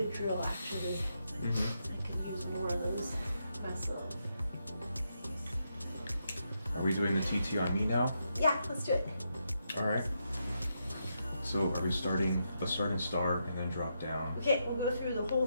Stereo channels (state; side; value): inverted; both; correlation -0.82